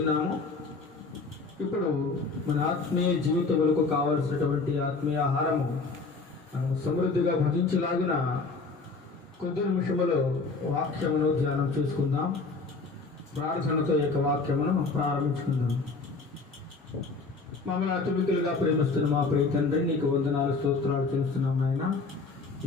ఇప్పుడు మన ఆత్మీయ జీవితములకు కావలసినటువంటి ఆత్మీయ ఆహారము మనం సమృద్ధిగా భజించలాగిన కొద్ది నిమిషములో వాక్యమును ధ్యానం చేసుకుందాం. ప్రార్థనతో ఈ యొక్క వాక్యమును ప్రారంభించుకుందాం. మమ్మల్ని అతిమికులుగా ప్రేమిస్తున్న మా ప్రియ తండ్రి, నీకు వందనాలు, స్తోత్రాలు చేస్తున్నాం నాయన.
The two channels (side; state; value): right; quieter; 4.0 dB